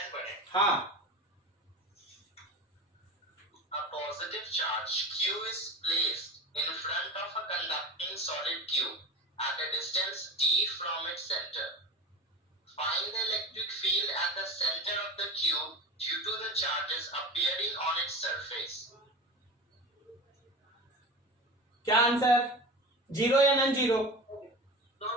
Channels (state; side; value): normal; both; correlation 0.30